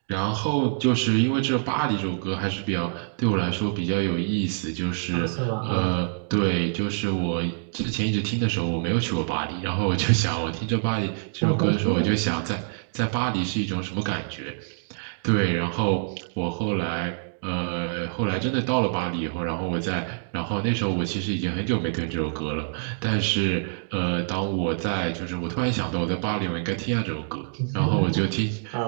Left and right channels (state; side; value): silent; left; digital silence